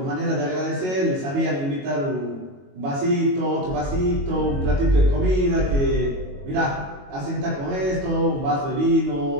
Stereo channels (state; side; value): late; left; 22 ms